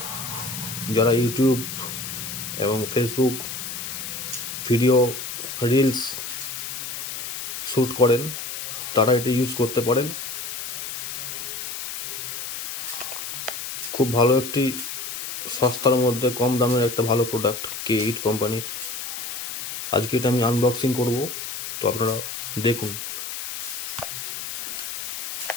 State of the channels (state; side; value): noise; left; hiss, 6 dB below the sound